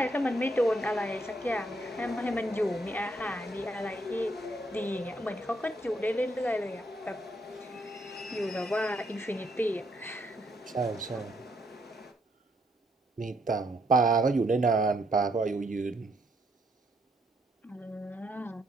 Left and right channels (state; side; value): normal; both; correlation 0.73